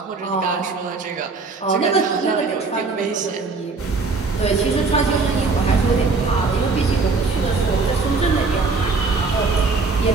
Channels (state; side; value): quieter; left; 4.1 dB